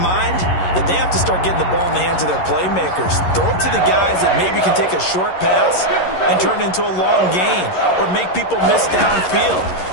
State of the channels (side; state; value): right; late; 11 ms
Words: that they have to start getting the ball in the hands of their playmakers. Throw it to the guys that maybe can take a short pass and turn it into a long gain or make people miss downfield.